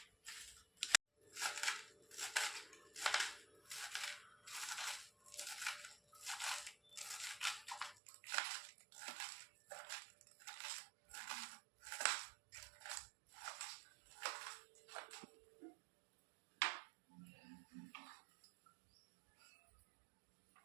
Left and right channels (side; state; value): left; drops out; at 8.0 s